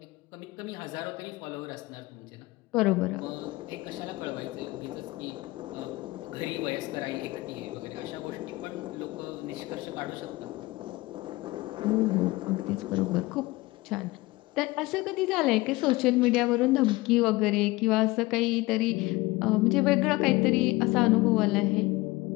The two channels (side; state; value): right; quieter; 20.9 dB